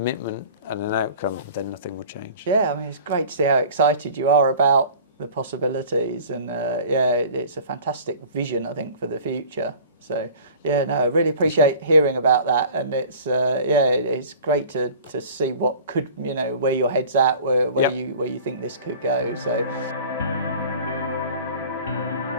and an outcome, then nothing will change. Yeah, I mean, it's great to see how excited you are about the possibilities, and it's a fantastic vision, I think, for the future. So I really appreciate hearing about that, and it's great to see what could, where your head's at, where you think this could go. So.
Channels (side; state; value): both; inverted; correlation -0.44